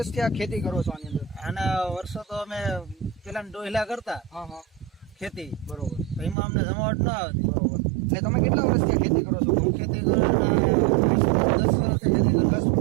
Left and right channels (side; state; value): left; drops out; at 6.4 s